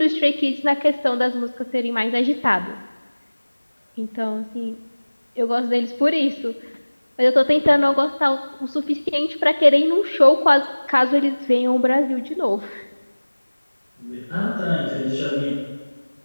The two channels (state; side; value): inverted; both; correlation -1.00